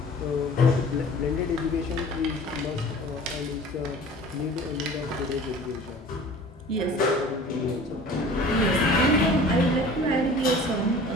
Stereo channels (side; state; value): both; normal; correlation 0.44